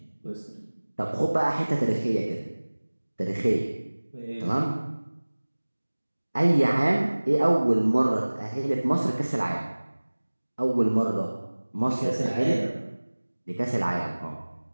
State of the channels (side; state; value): both; inverted; correlation -1.00